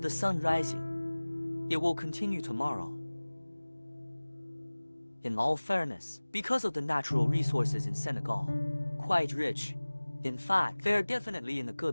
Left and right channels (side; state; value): both; inverted; correlation -1.00